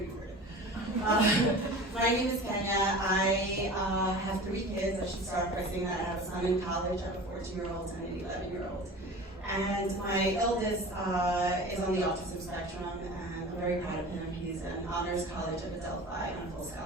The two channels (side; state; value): both; normal; correlation 0.37